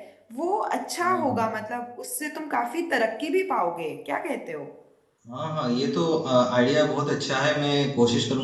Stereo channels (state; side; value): identical; both; correlation 1.00